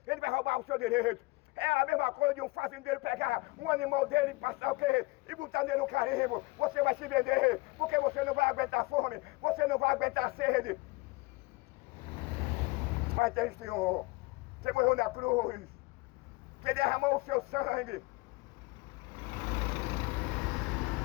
ele vai roubar o seu direito. É a mesma coisa de um fazendeiro pegar um animal dele e passar o quê? E botar nele no carimbo. Você vai se vender, porque você não vai aguentar fome, você não vai aguentar sede. Mas tem Senhor, que morreu na cruz, que derramou o seu sangue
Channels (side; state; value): right; quieter; 23.8 dB